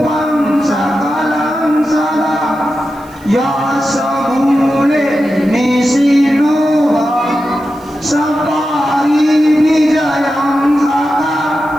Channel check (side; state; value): right; noise; hiss, 27 dB below the sound